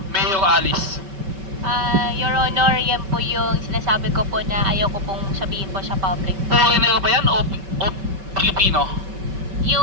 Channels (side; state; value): left; late; 5.2 ms